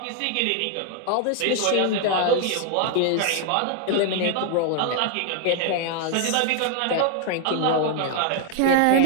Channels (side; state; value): both; different; correlation 0.00